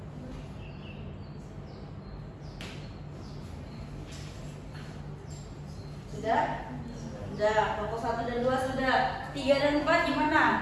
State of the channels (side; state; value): both; identical; correlation 1.00